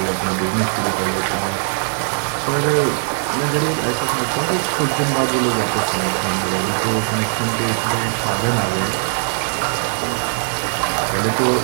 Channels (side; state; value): left; silent; 64 dB below the other